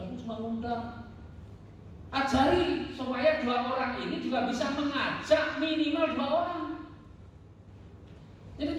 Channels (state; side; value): identical; both; correlation 1.00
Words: cuma ngundang. Ajari supaya 2 orang ini juga bisa mengajak minimal 2 orang. Jadi